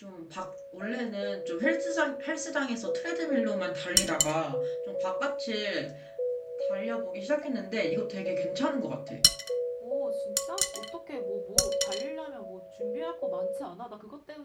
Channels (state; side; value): identical; both; correlation 1.00